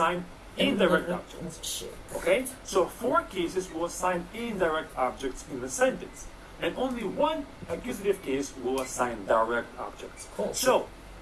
indirect objects. Okay? So 4 cases will assign indirect objects in the sentence. And only 1 accusative case will assign direct objects. So,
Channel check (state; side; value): identical; both; correlation 1.00